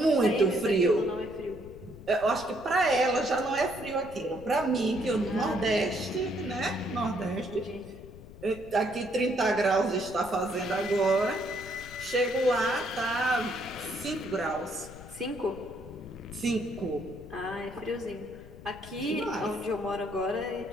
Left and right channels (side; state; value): left; noise; rumble, 17 dB below the sound